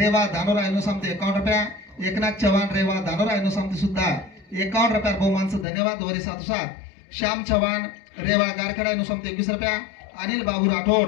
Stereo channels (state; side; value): drops out; right; at 5.7 s